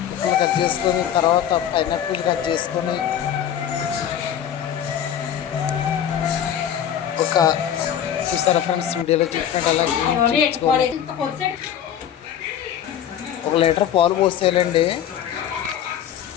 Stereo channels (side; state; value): right; quieter; 9.8 dB